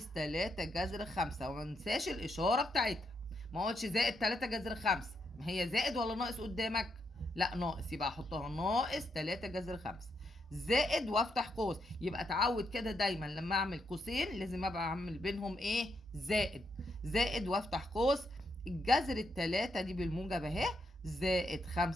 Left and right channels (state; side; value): normal; both; correlation 0.80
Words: 3 جذر 5، وما ننساش الإشارة بتاعتها. ما قلتش زائد 3 جذر 5، ما هي زائد ولا ناقص قدامك؟ لا ناقص، يبقى احطها ناقص 3 جذر 5 زائد وافتح قوس. يبقى اتعود كده دايما لما اعمل قوسين لازم ابقى اعمل بينهم ايه؟ زائد وافتح قوس. الجذر التلاتة دي بالموجب اهي، زائد